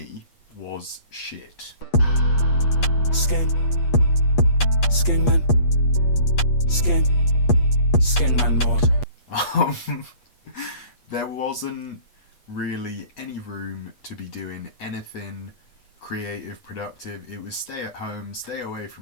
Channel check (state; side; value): late; right; 8.3 ms